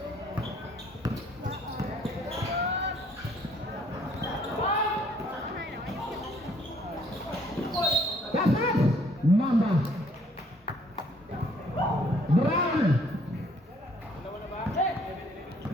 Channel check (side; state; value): both; normal; correlation 0.63